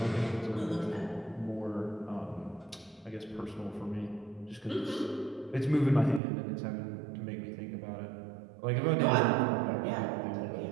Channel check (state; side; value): drops out; left; at 6.2 s